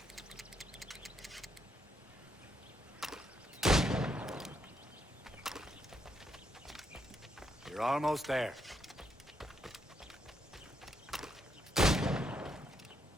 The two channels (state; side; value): normal; both; correlation 0.77